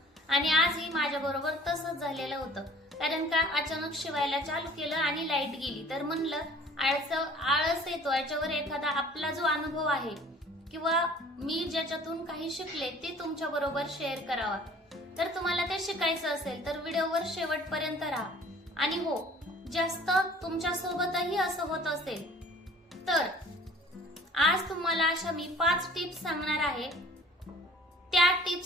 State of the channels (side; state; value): both; normal; correlation 0.51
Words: आणि आजही माझ्या बरोबर तसंच झालेलं होतं, कारण का अचानक शिवायला चालू केलं आणि लाईट गेली, तर म्हणलं आळस येतो, याच्यावर एखादा आपला जो अनुभव आहे किंवा मी ज्याच्यातून काही शिकले ते तुमच्या बरोबर शेअर करावा। तर तुम्हाला ते शिकायचं असेल तर व्हिडिओवर शेवटपर्यंत राहा। आणि हो, जास्त तुमच्या सोबतही असं होत असेल तर आज तुम्हाला अशा मी 5 टिप्स सांगणार आहे। त्या